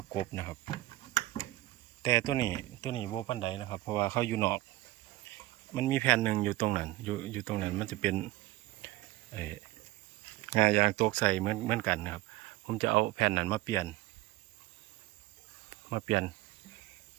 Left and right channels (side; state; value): left; quieter; 17.7 dB